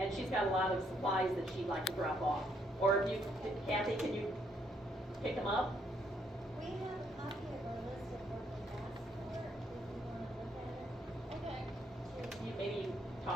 she's got a lot of supplies that she'd like to drop off. Or if Kathy, can you pick them up? We have a copy of our list of what we asked for, if you want to look at it. Okay. Maybe you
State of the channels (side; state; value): both; normal; correlation 0.72